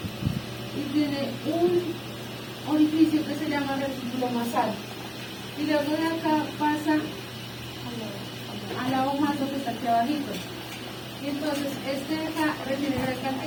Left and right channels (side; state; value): both; identical; correlation 1.00